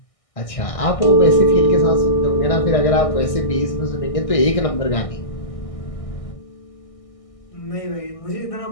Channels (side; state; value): right; late; 1.6 ms